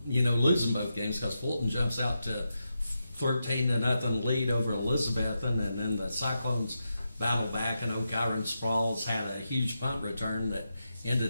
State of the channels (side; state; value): both; inverted; correlation -0.87